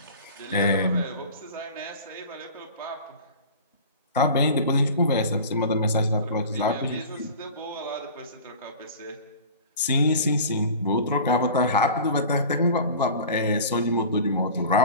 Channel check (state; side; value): inverted; both; correlation -0.38